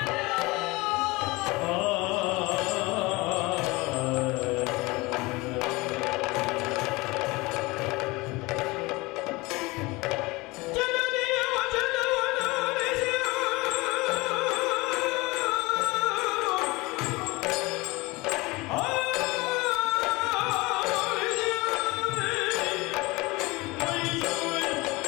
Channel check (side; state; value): right; quieter; 23.1 dB